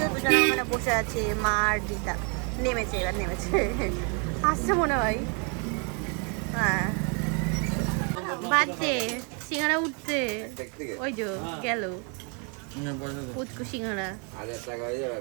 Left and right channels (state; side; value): quieter; left; 36.2 dB